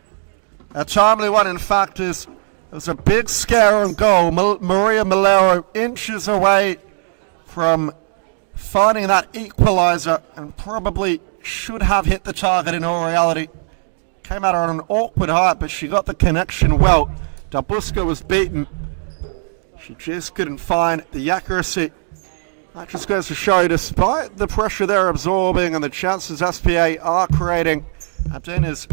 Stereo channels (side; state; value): left; silent; digital silence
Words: a timely one, in fact, is it was a big scare on goal. Maria Malero inches away from finding that equaliser and probably should have hit the target in all reality. Came at her on an awkward height, but she got the connection well. Dabusca was beaten. She just couldn't find the accuracy. That just goes to show, despite the pressure they're absorbing and the chances SPA are creating, Andinas